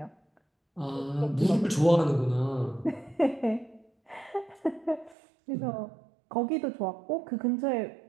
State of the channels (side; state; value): left; drops out; at 5.2 s